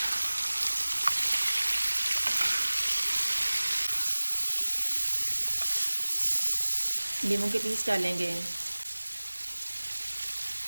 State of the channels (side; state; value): both; inverted; correlation -1.00